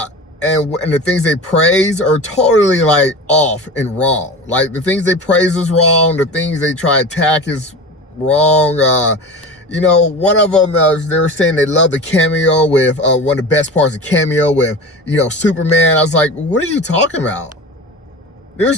the things they praise are totally like off and wrong. Like the things they praise is wrong. The things they try to attack is wrong. One of them, they were saying they love the cameo with, one of the best parts of cameo with, Superman. I was like, what are you talking about?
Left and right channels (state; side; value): normal; both; correlation 0.32